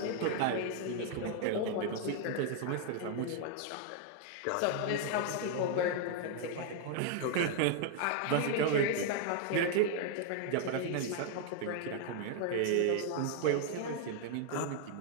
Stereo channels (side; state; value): both; different; correlation 0.00